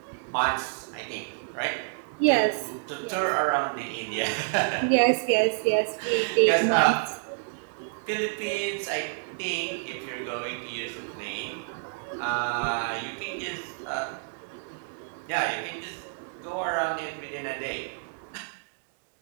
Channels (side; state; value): left; silent; digital silence